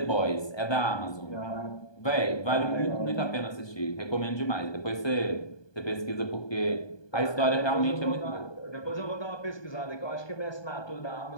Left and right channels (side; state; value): right; late; 1.2 ms